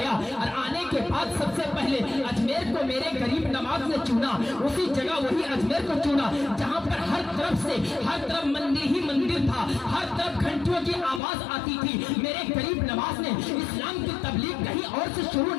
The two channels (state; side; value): drops out; right; at 11.2 s